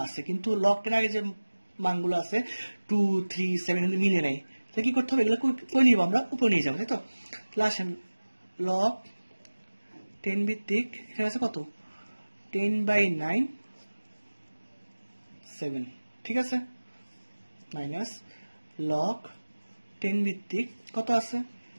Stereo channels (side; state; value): both; inverted; correlation -1.00